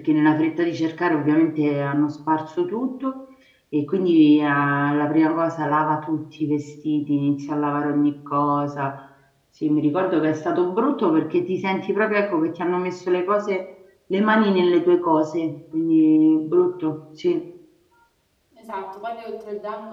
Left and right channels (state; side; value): identical; both; correlation 1.00